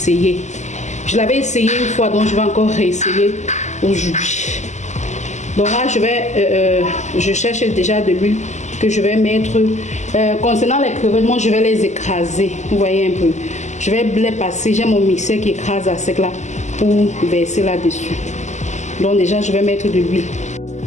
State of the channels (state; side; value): late; right; 0.34 ms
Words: Je l'avais essayé une fois, donc je vais encore réessayer aujourd'hui. Donc là je cherche déjà de l'huile que je vais mettre. Concernant les crevettes, moi je vais les écraser. Vous voyez un peu. Je vais les passer. J'ai mon mixeur qui écrase à sec là pour verser là-dessus. Donc déjà je vais mettre de l'huile.